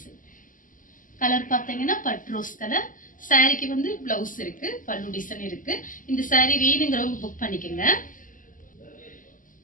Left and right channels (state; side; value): late; right; 0.38 ms